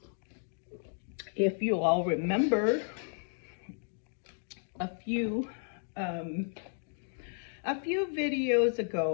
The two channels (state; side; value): silent; right; digital silence